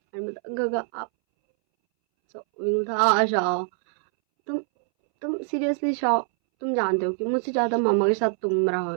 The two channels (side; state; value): left; silent; 62 dB below the other